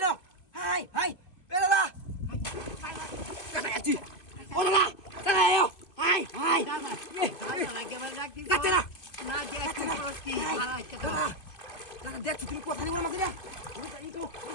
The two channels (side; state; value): right; late; 2.5 ms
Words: হাই, এ দাদা, কাটাচ্ছি, ও দাদা, চলে এও, হাই, কাটে না, না দেখছি কি, দাদা, দেখছি তুমি কথা নিয়ে বড় মাছ দিয়া, এই তো,